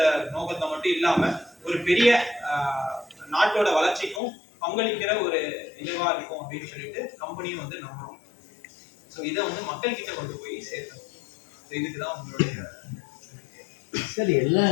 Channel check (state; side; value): drops out; right; at 4.2 s